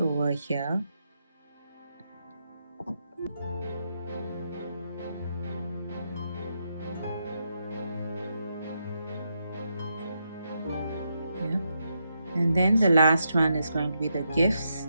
here. Yeah, and then the last one is going to be the gifts.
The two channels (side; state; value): both; inverted; correlation -0.83